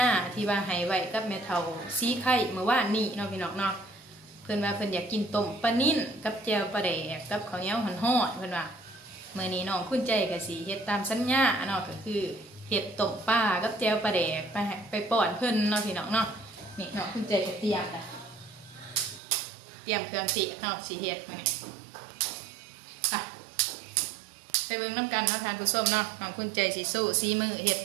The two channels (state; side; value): drops out; left; at 19.2 s